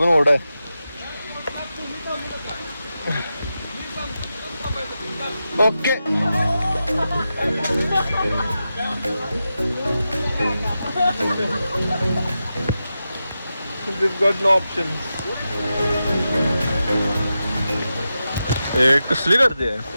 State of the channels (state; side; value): inverted; both; correlation -0.90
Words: ओढ आहे. Okay. We've got no options. कसली गर्दी आहे.